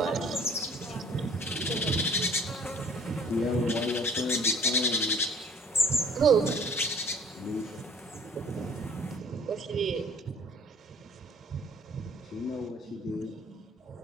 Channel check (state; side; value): normal; both; correlation 0.52